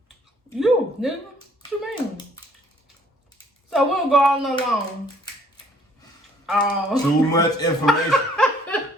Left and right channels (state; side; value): normal; both; correlation 0.61